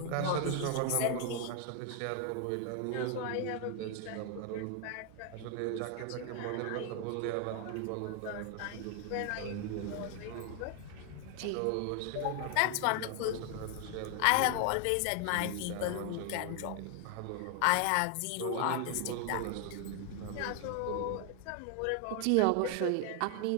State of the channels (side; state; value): both; different; correlation 0.00